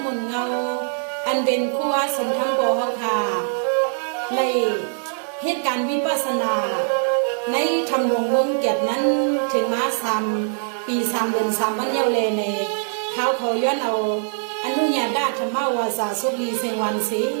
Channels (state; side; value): silent; left; digital silence